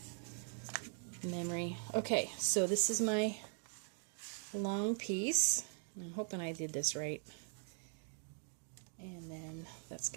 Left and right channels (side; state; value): left; silent; 50 dB below the other